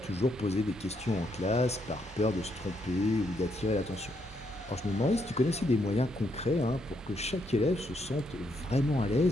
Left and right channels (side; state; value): both; normal; correlation 0.76